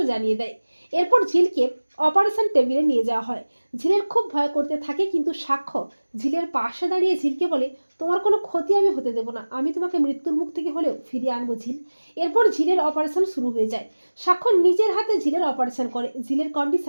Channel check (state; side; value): inverted; both; correlation -1.00